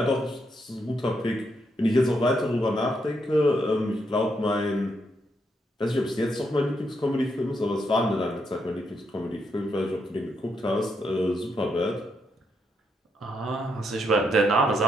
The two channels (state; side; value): normal; both; correlation 0.78